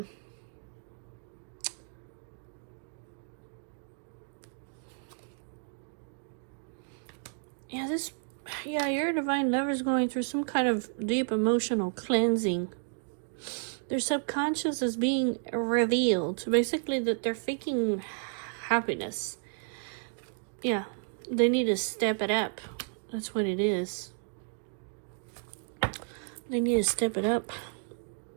your divine lover is going through some kind of deep emotional cleansing. Their subconscious is being revealed. Basically, that they're faking happiness. Yeah, they need to step it up. That's what it is. They need to step it up.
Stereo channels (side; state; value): left; silent; digital silence